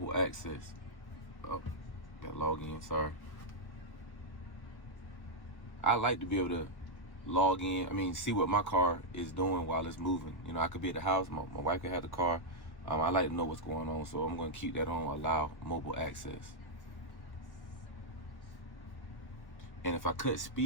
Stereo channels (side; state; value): right; late; 1.1 ms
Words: access. Oh, got log in, sorry. I like to be able to log in, see what my car is doing while it's moving. You know, I could be at the house, my wife could have the car. I like to know what's going on, so I'm going to keep that on, allow mobile access. And if I cut